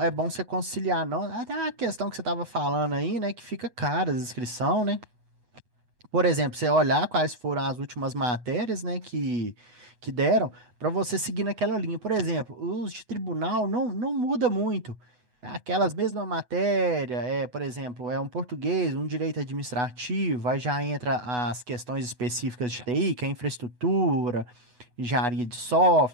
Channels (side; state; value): left; late; 8.1 ms